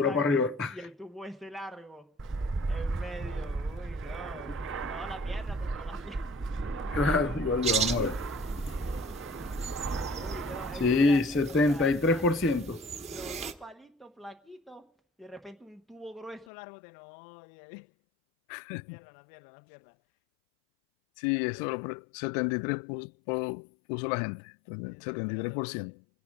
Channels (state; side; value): drops out; right; at 16.4 s